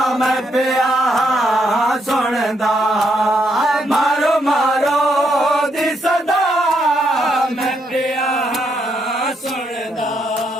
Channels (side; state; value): both; normal; correlation 0.76